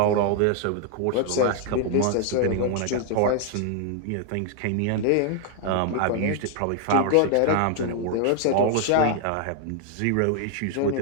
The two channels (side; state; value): both; different; correlation 0.00